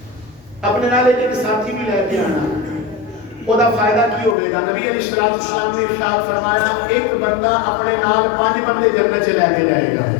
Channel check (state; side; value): drops out; right; at 4.4 s